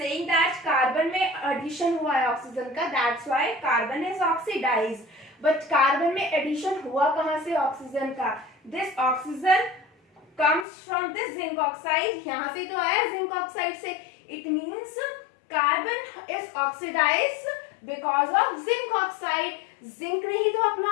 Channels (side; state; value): right; drops out; at 10.7 s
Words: that carbon में एडिशन हुआ है ऑक्सीजन का, that's why carbon is oxidised. But carbon में एडिशन हुआ कहां से ऑक्सीजन का? This oxygen comes from this zinc oxide, यहाँ से तो आया जिंक ऑक्साइड से। it means carbon is oxidized because of zinc oxide। Zinc ने ही तो